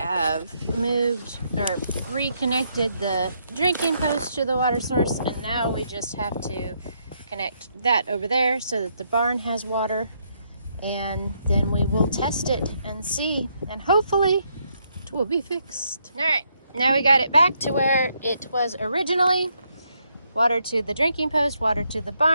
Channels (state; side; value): inverted; both; correlation -0.75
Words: moved or reconnected the drinking post to the water source, and now we just have to connect that over there so that the barn has water, and then we will test it and see, and hopefully it will be fixed. All right, now we got it back to where it was originally. Water to the drinking post, water to the